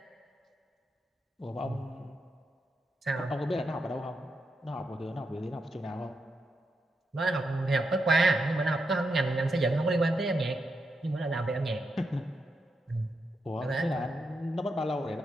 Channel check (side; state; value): both; normal; correlation 0.84